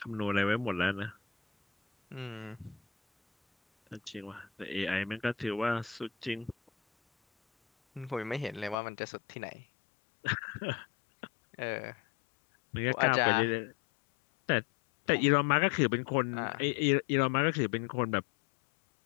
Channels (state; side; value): drops out; right; at 8.8 s